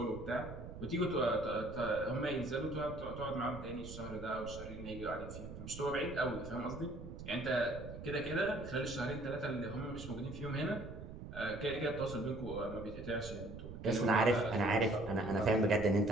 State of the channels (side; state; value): right; noise; rumble, 11 dB below the sound